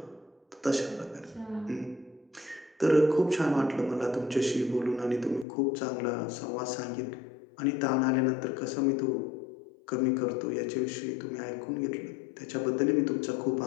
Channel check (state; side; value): drops out; right; at 5.5 s